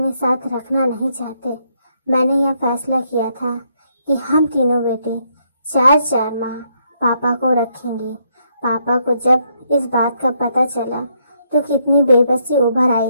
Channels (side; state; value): both; inverted; correlation -0.74